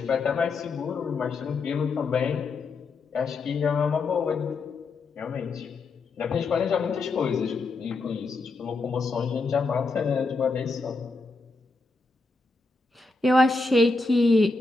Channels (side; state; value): right; quieter; 3.7 dB